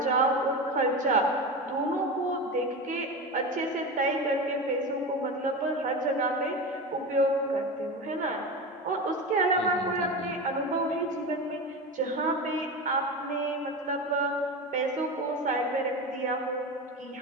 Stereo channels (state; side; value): normal; both; correlation 0.24